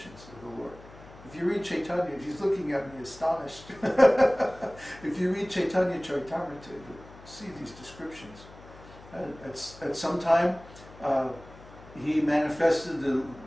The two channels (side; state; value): left; noise; hum, 20 dB below the sound